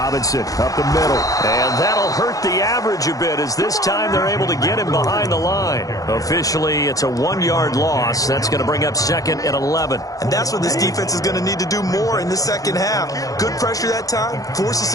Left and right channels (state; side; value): late; right; 0.17 ms